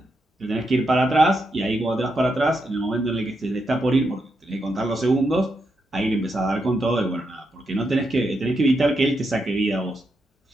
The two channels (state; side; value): normal; both; correlation 0.83